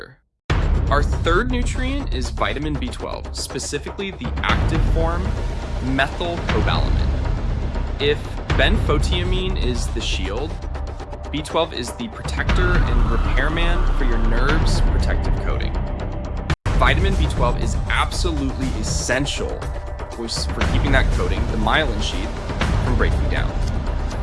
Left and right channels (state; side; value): identical; both; correlation 1.00